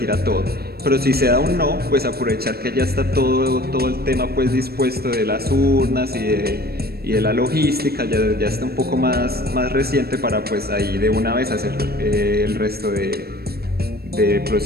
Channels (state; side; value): late; left; 0.46 ms